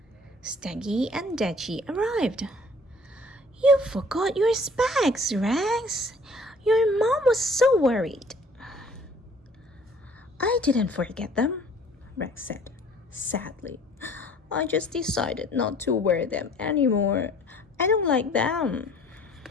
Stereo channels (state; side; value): normal; both; correlation 0.53